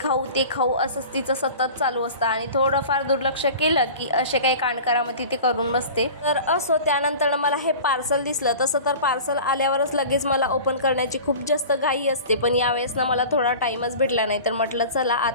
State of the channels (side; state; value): both; inverted; correlation -0.38